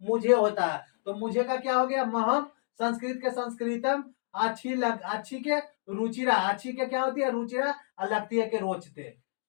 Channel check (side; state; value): right; silent; digital silence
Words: मुझे होता है। तो मुझे का क्या हो गया? महम। संस्कृत के संस्कृतम, अच्छी के रुचिरा, अच्छी के क्या होती है? रुचिरा, और लगती है के रोचते,